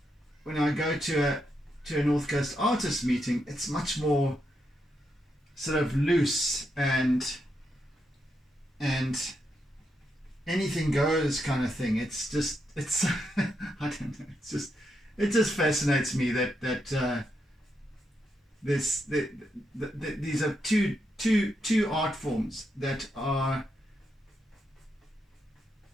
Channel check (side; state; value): both; normal; correlation 0.82